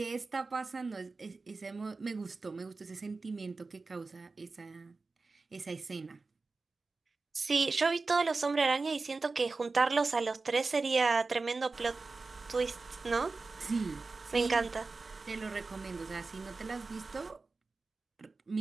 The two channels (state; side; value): quieter; left; 3.9 dB